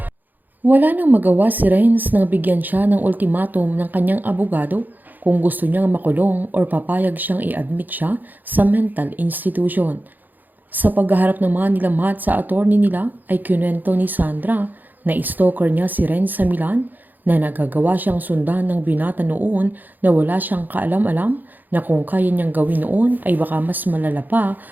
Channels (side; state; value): left; late; 0.086 ms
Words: Wala nang magawa si Renz nang bigyan siya ng ultimatum ng kanyang abogado kung gusto niyang makulong or papayag siyang i-admit siya sa mental institution. Sa paghaharap naman nila Matt sa attorney nila ay kinuwento ni Sandra na stalker niya si Renz sa Milan, na nagagawa siyang sundan ng binata noon na wala siyang kaalam-alam na kung kaya niyang gawin noon ay baka mas malala pa